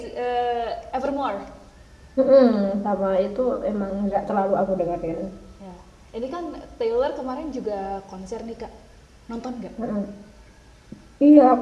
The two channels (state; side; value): identical; both; correlation 1.00